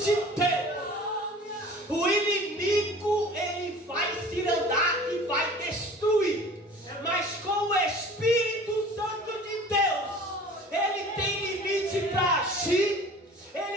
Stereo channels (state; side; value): normal; both; correlation 0.45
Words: Deus, o inimigo, ele